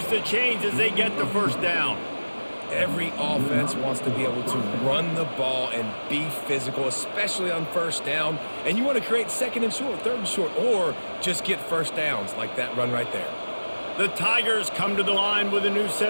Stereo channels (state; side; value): inverted; both; correlation -1.00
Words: the chains as they get the first down. Every offense wants to be able to run the ball and be physical, especially on first down. And you want to create second and short, third and short, or just get first downs like that run right there. The Tigers come to the line with a new